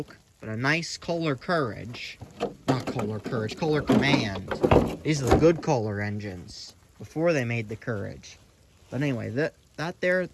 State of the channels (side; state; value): both; identical; correlation 1.00